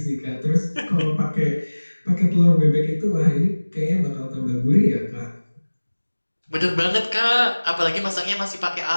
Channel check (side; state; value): both; inverted; correlation -1.00